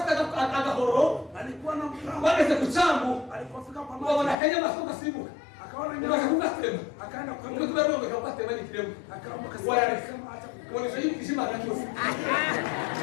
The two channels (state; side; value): drops out; right; at 4.4 s